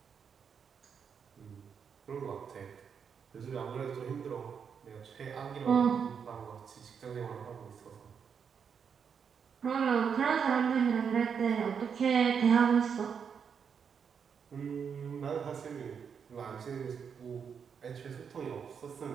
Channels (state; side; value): quieter; left; 6.8 dB